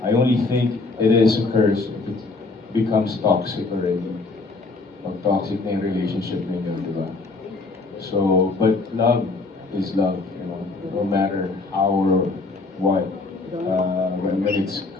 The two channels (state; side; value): quieter; right; 3.6 dB